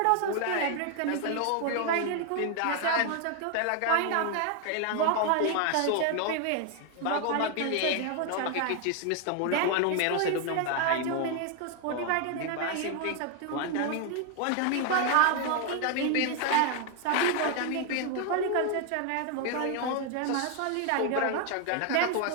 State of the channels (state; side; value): different; both; correlation 0.00